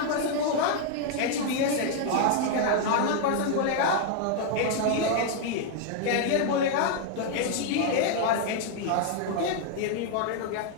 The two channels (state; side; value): different; both; correlation 0.00